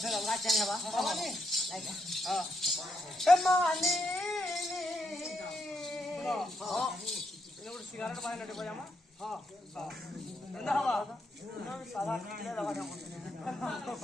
ଫେର ଅଲଗା ଚାହିଁ ହବା ହବାନି ଲାଇକା ଏମାନେ ହଁ ଏନେ ଗୋଟେ ସିଗାରେଟ ବାହାରେ ନେଟେ ବଜାମା ହଁ ଏନ୍ତା ହବା ସାଧା କିଲେ ଦବା କାମ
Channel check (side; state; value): both; normal; correlation 0.79